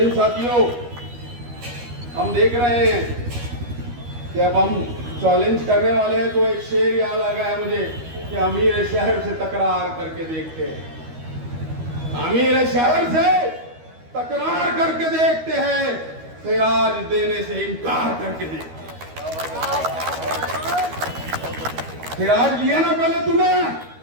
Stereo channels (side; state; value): left; late; 13 ms